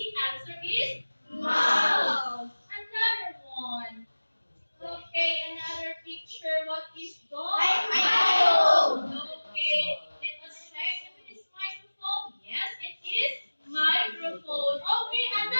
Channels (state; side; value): inverted; both; correlation -1.00